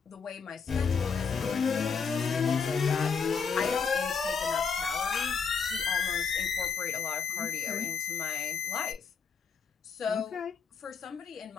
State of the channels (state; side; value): quieter; right; 5.9 dB